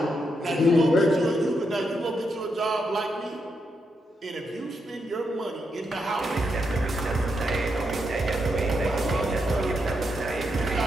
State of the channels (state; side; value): normal; both; correlation 0.82